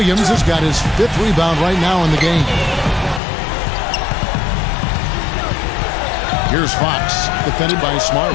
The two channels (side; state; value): right; drops out; at 3.2 s